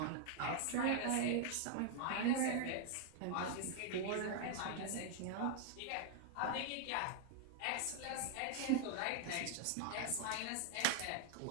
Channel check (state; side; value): different; both; correlation 0.00